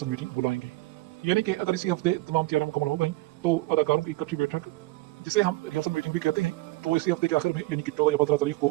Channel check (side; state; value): left; quieter; 19.9 dB